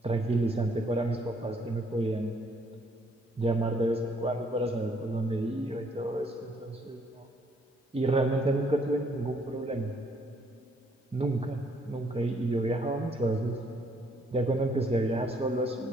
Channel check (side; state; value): both; normal; correlation 0.67